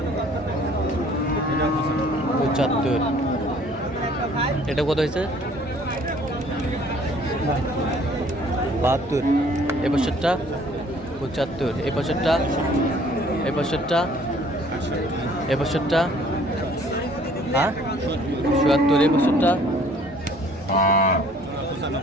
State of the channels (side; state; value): both; normal; correlation 0.56